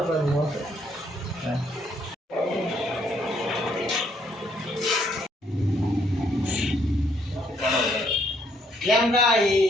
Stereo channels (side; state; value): both; normal; correlation 0.69